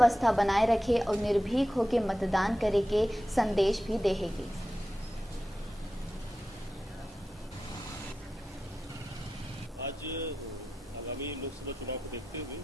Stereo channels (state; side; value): normal; both; correlation 0.92